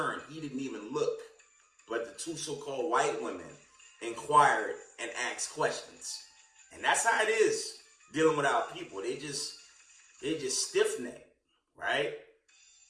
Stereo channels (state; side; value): identical; both; correlation 1.00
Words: He didn't even look. But the two so-called white women inquired and asked questions. And that's how it is dealing with our people. They just stiff-necked, right?